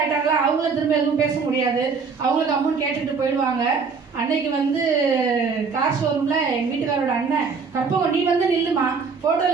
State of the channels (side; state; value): left; quieter; 5.2 dB